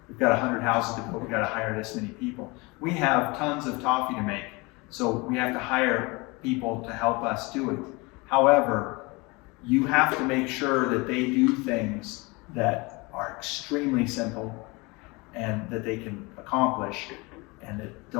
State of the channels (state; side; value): quieter; right; 25.9 dB